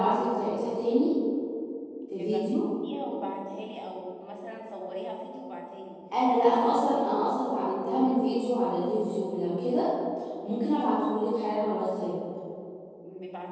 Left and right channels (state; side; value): identical; both; correlation 1.00